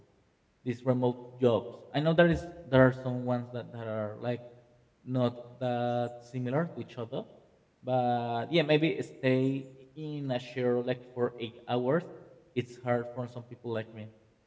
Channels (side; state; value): both; identical; correlation 1.00